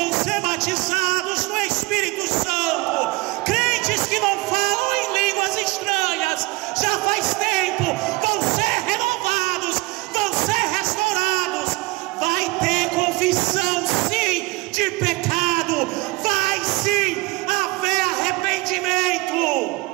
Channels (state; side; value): quieter; left; 23.1 dB